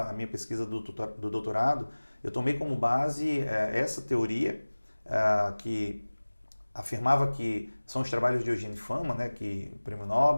minha pesquisa do doutorado, eu tomei como base essa teoria que afirmava que são os trabalhos de Eugene Fama, né, que o Prêmio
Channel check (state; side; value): inverted; both; correlation -1.00